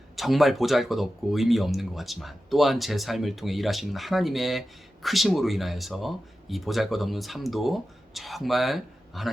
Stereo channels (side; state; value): both; normal; correlation 0.93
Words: 정말 보잘것없고 의미 없는 것 같지만 또한 제 삶을 통해 일하시는 하나님의 크심으로 인하여서 이 보잘것없는 삶도 정말